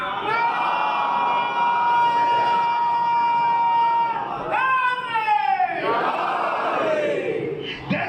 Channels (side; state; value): both; identical; correlation 1.00